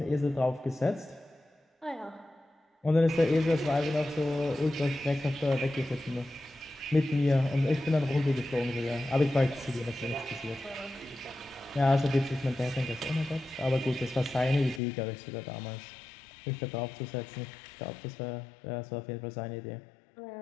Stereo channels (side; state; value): right; drops out; at 14.8 s